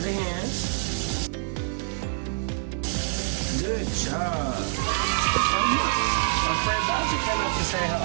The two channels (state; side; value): silent; left; digital silence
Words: the hands. Good job. Oh look, our friend Bowser came up to say